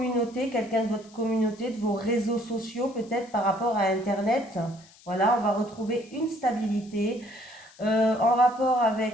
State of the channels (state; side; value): noise; left; hiss, 25 dB below the sound